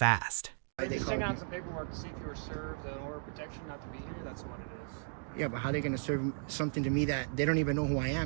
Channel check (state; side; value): silent; left; digital silence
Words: They just sent out some paperwork to see if you were served an order of protection not to be here. That's what it is. Yeah, but how are they going to serve something to me that they don't even know who I